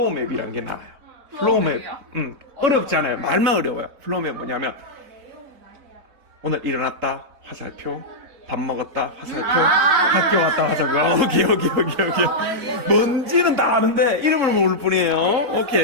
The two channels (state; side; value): late; left; 4.1 ms